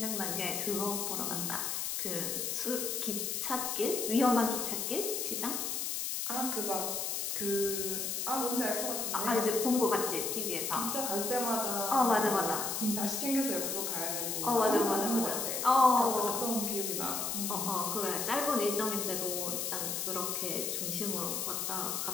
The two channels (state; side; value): noise; left; hiss, 1 dB below the sound